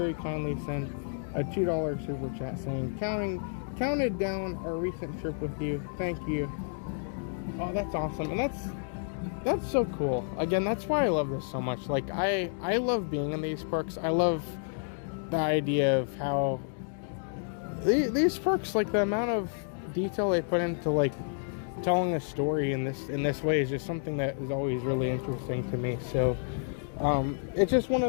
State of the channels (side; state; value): right; silent; digital silence